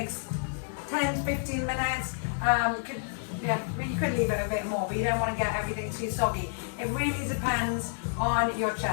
10 to 15 minutes. You could leave it a bit more, but you don't want to get everything too soggy. It really depends on your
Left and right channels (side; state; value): right; silent; 58 dB below the other